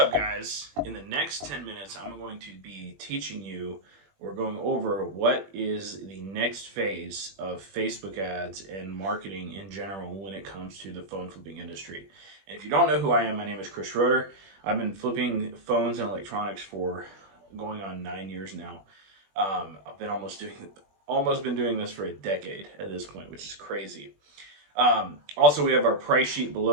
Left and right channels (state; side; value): late; left; 21 ms